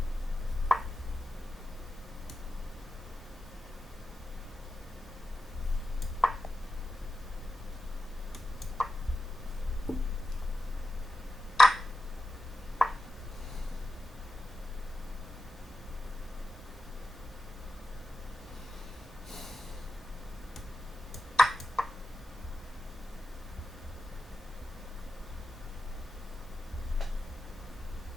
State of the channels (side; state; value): both; normal; correlation 0.92